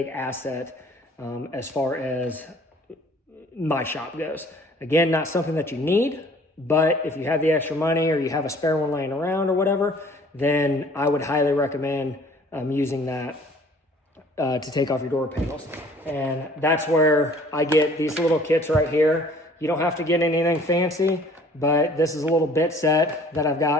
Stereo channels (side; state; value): both; normal; correlation 0.54